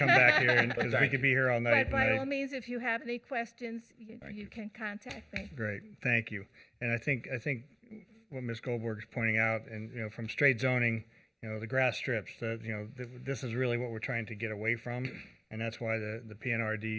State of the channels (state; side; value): identical; both; correlation 1.00